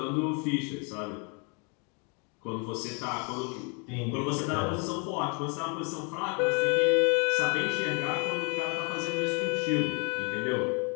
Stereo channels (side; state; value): right; quieter; 34.9 dB